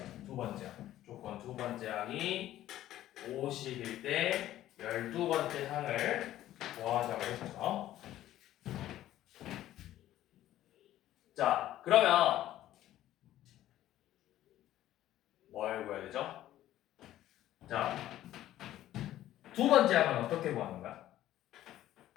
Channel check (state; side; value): quieter; right; 13.5 dB